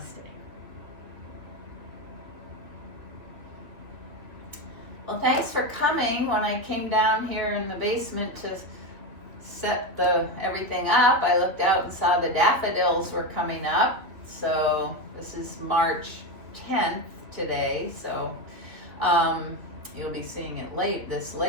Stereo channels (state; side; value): late; left; 2.7 ms